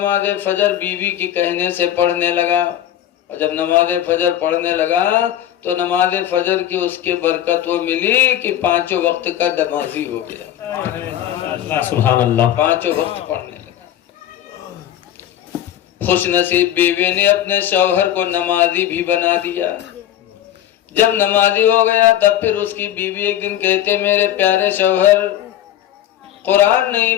فجر بیوی کی کہنے سے پڑھنے لگا. اور جب نماز فجر پڑھنے لگا تو نماز فجر کی اس کے برکت وہ ملی کہ 5 وقت کا نمازی ہو گیا. سبحان اللہ. 5 وقت پڑھنے لگا. خوش نصیب بیوی نے اپنے شوہر کو نمازی بھی بنا دیا. جب نمازی ہو گیا تب پھر اس کی بیوی ایک دن کہتے میرے پیارے شوہر قرآن نہیں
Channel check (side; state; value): right; quieter; 11.6 dB